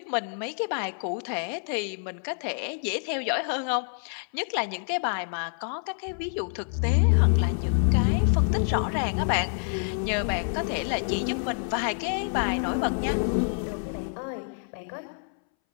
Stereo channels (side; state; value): right; silent; 60 dB below the other